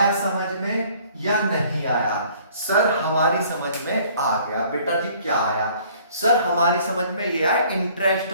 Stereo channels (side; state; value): both; inverted; correlation -0.56